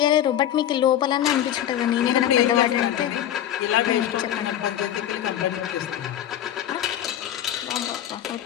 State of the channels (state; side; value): quieter; right; 11.2 dB